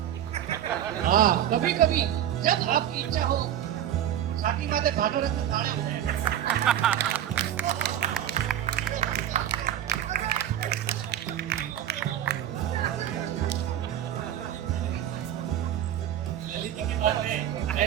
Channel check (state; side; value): quieter; left; 10.9 dB